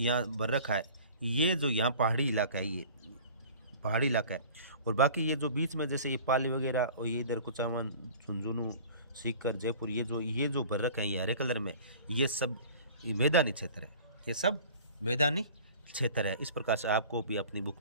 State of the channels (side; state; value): both; inverted; correlation -0.44